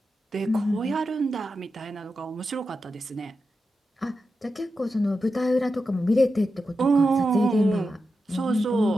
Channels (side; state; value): both; normal; correlation 0.89